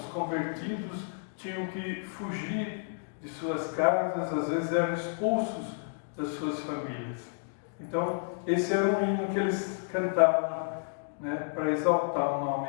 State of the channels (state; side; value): silent; right; digital silence